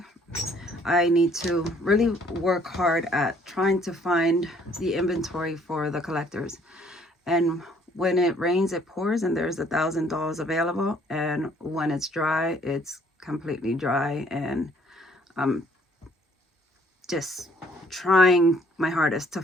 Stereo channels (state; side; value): normal; both; correlation 0.61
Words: I need to really work hard at trying to find the inventory for the collectors. And when it rains, it pours, and there's $1,000 available. And when it's dry, it's completely dry. And I'm just trying my hardest to